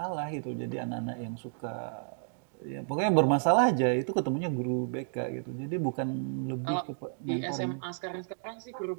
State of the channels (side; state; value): left; silent; digital silence